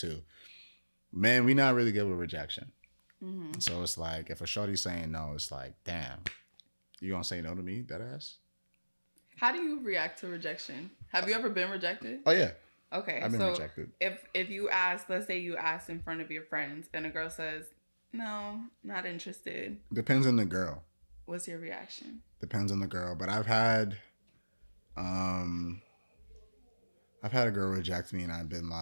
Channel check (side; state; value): both; inverted; correlation -1.00